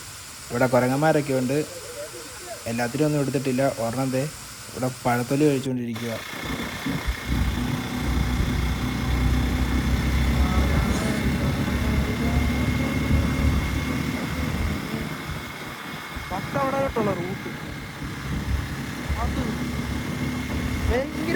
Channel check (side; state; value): both; identical; correlation 1.00